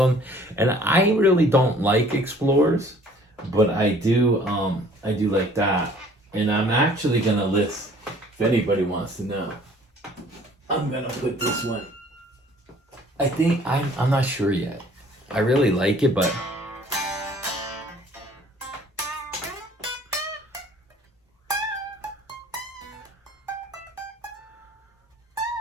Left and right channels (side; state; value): both; normal; correlation 0.54